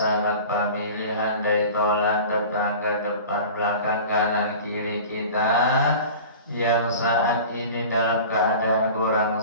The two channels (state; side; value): inverted; both; correlation -0.38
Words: pemilihan, dari tolan, tetangga, depan belakang, kanan kiri kita yang saat ini dalam keadaan kurang